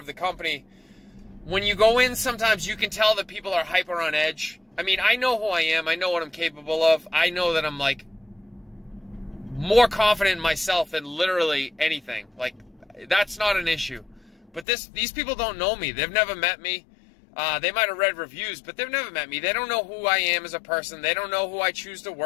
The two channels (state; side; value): drops out; right; at 14.7 s